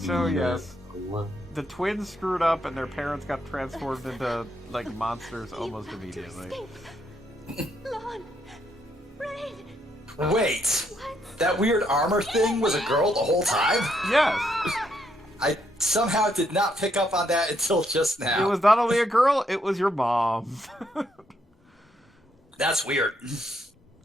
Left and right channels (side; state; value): both; normal; correlation 0.75